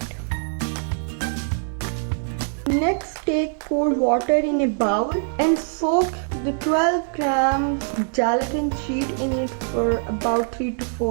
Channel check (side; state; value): left; silent; digital silence